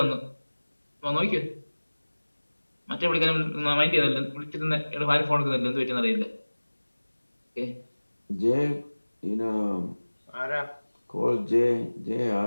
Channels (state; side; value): inverted; both; correlation -1.00